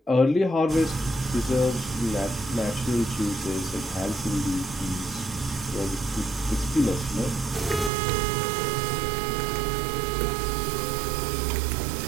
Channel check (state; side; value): drops out; left; at 7.9 s